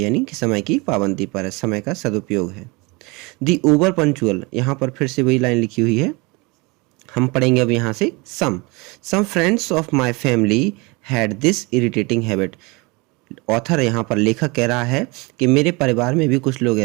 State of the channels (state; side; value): quieter; left; 26.5 dB